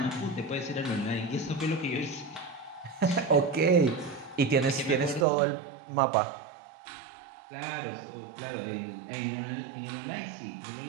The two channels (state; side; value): drops out; left; at 5.2 s